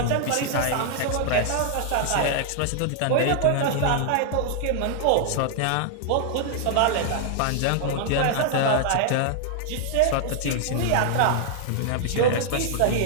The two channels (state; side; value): different; both; correlation -0.01